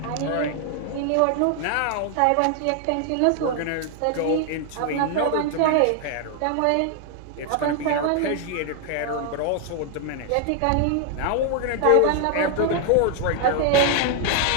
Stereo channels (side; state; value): both; different; correlation 0.00